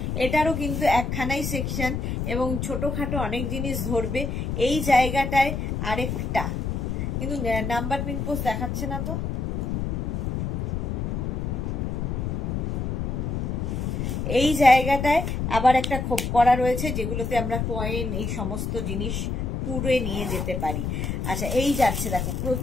এটারও কিন্তু একখানাই সেকশন এবং ছোটখাটো অনেক জিনিস ধরবে। এই জায়গাটায় আরেকটা কিন্তু নাম্বার পিন পোস্ট দেখাচ্ছে না তো, এই জায়গাটায় আবার একটা খোপ করা রয়েছে, যেগুলোতে আমরা কয়েন এই সমস্ত জিনিস পুরে নিয়ে যেতে পারি। আচ্ছা, এই যাচ্ছে দেখো,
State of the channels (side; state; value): left; noise; rumble, 2 dB below the sound